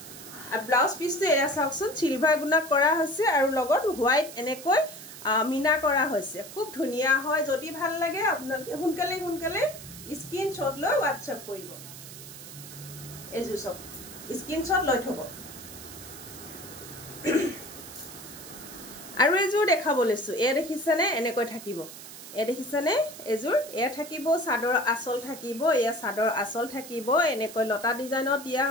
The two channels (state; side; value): noise; right; hiss, 14 dB below the sound